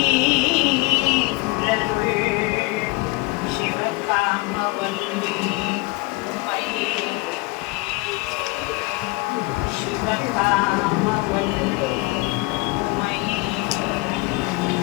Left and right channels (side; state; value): right; quieter; 24.4 dB